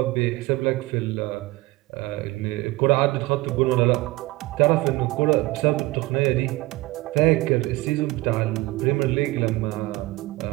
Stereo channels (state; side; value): quieter; left; 20.2 dB